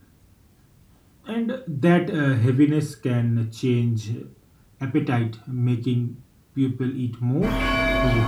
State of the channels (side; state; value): both; identical; correlation 1.00